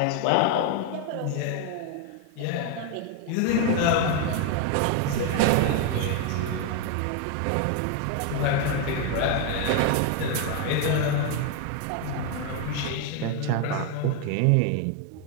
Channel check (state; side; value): different; both; correlation 0.01